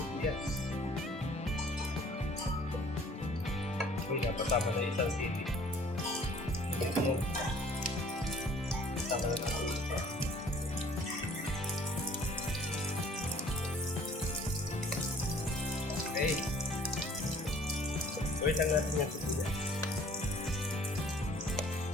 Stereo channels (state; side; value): normal; both; correlation 0.54